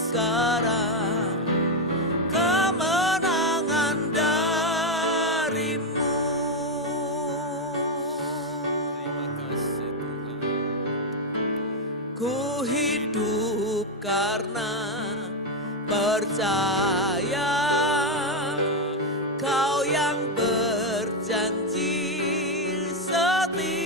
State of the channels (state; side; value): normal; both; correlation 0.05